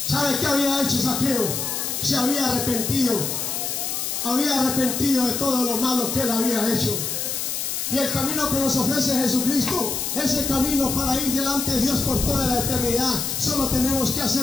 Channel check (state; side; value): noise; left; hiss, 2 dB below the sound